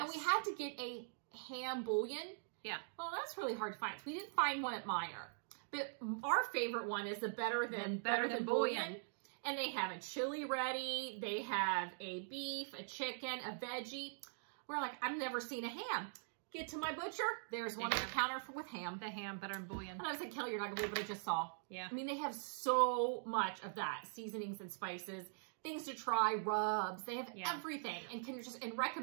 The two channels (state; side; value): silent; left; digital silence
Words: And we had to get a ham bouillon. Yeah. Well, that's really hard to find. We didn't find one at Meijer. But our favorite one is the Better Than Bouillon. And they have a chili ready. They have a beef, a chicken, a veggie. We're like, I've never seen a ham. Get to my butcher. There's one on the counter with ham. The ham, Better Than Bouillon. And I was like, Kelly, you're not going to believe what I just saw. Yeah. I mean, they have so much of that. Seasonings and spices. Things to try, rubs. They have everything, and can just